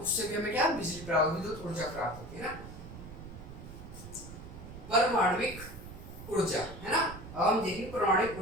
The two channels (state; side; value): noise; right; rumble, 13 dB below the sound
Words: उससे भी हमें क्या बिजली प्राप्त, विद्युत ऊर्जा प्राप्त होती है ना। परमाणविक ऊर्जा, है ना। अब हम देखेंगे परमाणविक